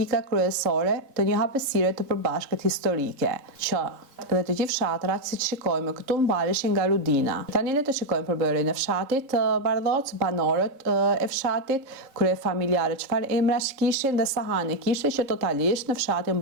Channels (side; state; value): left; late; 3.6 ms